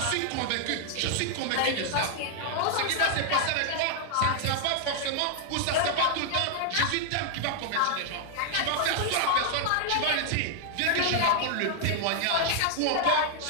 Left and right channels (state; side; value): different; both; correlation -0.01